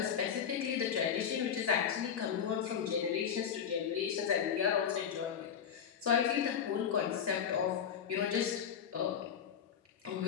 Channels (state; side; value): quieter; right; 8.0 dB